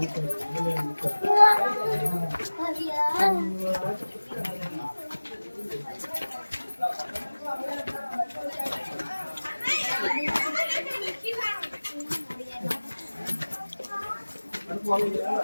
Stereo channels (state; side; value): inverted; both; correlation -1.00